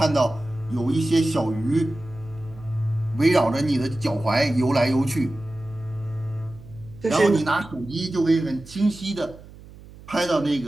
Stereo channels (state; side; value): noise; right; hum, 19 dB below the sound